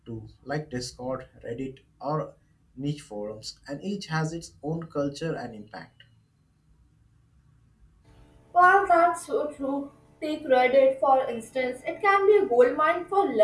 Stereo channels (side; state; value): both; identical; correlation 1.00